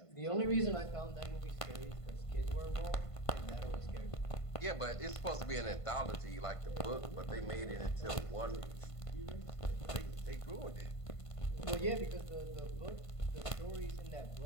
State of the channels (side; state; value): right; late; 1.5 ms